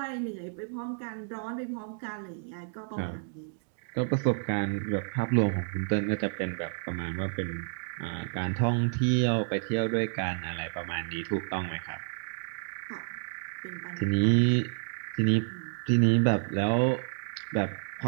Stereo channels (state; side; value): silent; left; digital silence